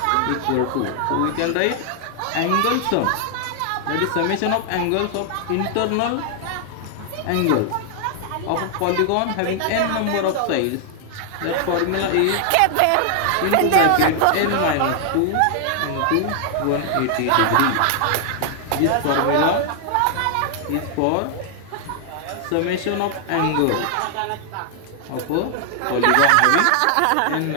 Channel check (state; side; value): different; both; correlation 0.00